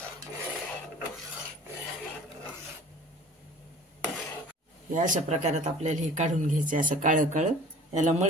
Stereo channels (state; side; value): normal; both; correlation 0.45